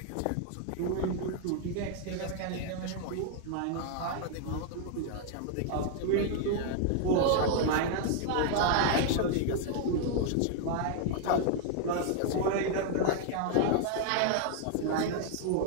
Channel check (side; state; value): both; different; correlation 0.00